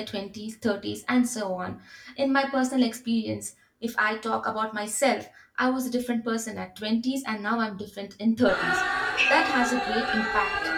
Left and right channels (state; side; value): identical; both; correlation 1.00